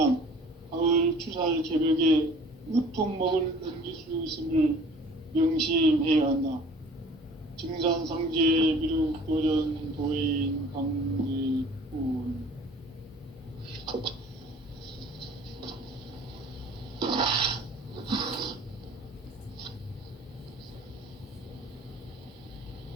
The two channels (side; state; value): both; normal; correlation 0.49